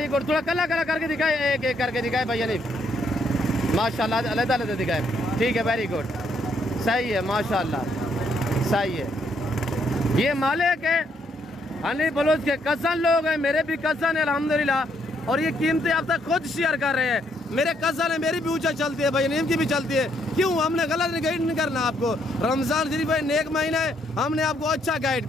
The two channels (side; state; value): both; normal; correlation 0.72